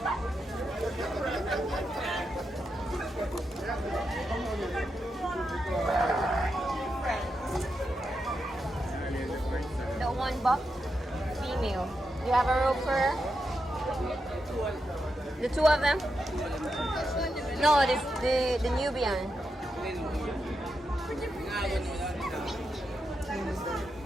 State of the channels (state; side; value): normal; both; correlation 0.86